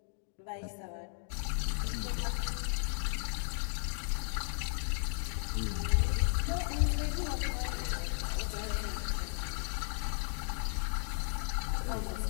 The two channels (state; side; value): silent; right; 54 dB below the other